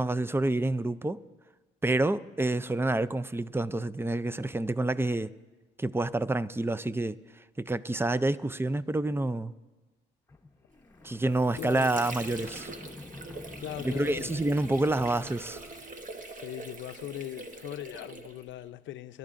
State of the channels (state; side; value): normal; both; correlation 0.84